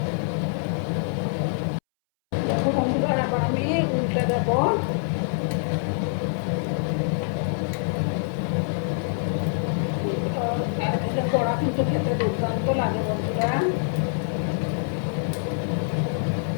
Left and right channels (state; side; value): silent; right; 62 dB below the other